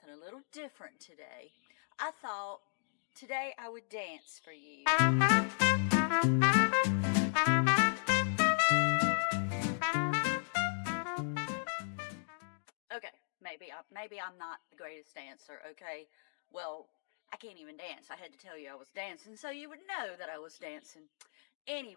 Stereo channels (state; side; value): silent; right; digital silence